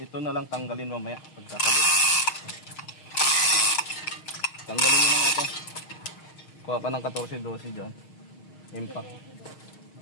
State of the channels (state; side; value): late; right; 6.4 ms